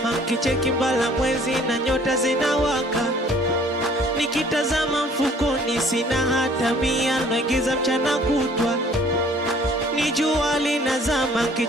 kicheki mbala mwezi na nyota zinawaka. Nikitazama mfukoni sina hata mia, naingiza mchana kutwa. Ni jua linazama,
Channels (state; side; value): normal; both; correlation 0.55